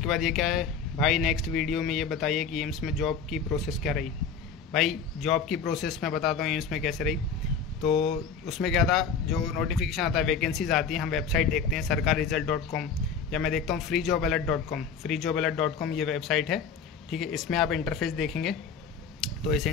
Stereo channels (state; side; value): quieter; right; 5.9 dB